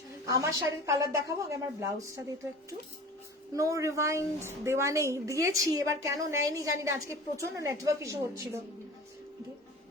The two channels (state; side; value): normal; both; correlation 0.38